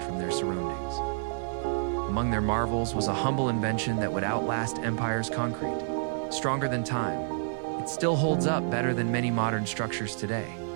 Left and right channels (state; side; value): silent; left; 59 dB below the other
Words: from their surroundings. Among their marvels was a humble invention that would outlast empire's concrete. Stronger than time, it still holds up better than many modern structures today.